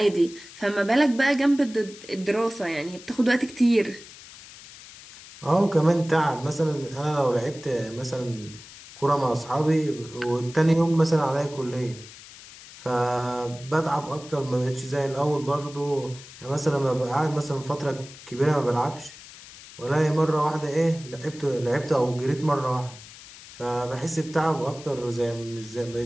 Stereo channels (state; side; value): noise; left; hiss, 18 dB below the sound